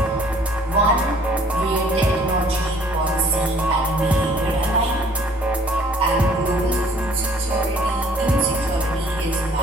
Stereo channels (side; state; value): both; normal; correlation 0.57